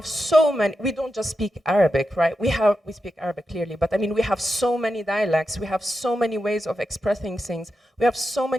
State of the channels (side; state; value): both; normal; correlation 0.89